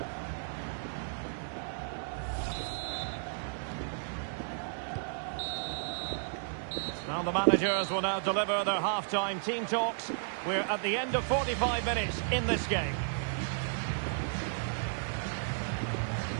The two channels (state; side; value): silent; left; digital silence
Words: Now the managers will now deliver their half-time team talks. We're at the end of 45 minutes in this game.